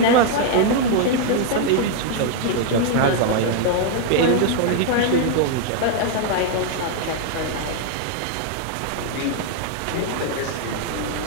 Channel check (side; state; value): both; different; correlation 0.00